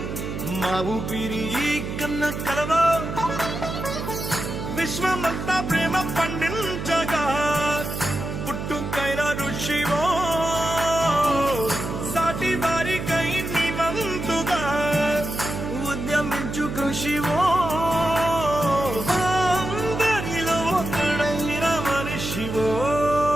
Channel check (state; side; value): noise; right; hum, 6 dB below the sound